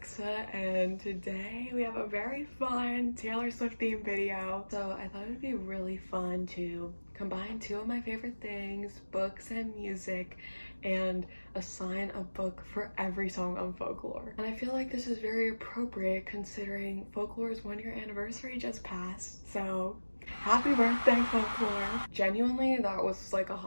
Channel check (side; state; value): both; inverted; correlation -1.00